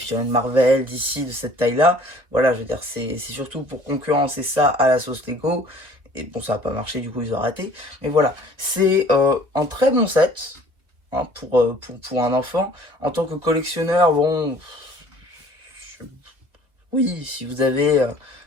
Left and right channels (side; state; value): left; late; 2.1 ms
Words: Marvel d'ici de cette taille-là. Voilà, je veux dire, c'est surtout pour concurrencer ça à la sauce Lego. Et bon, ça n'a pas marché, du coup ils ont arrêté. Mais voilà, c'est un très bon set hein, pour un enfant. En tant que collectionneur, bon, oui, si vous avez